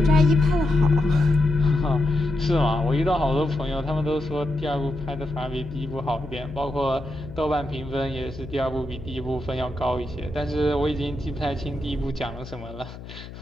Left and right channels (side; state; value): left; noise; hum, 14 dB below the sound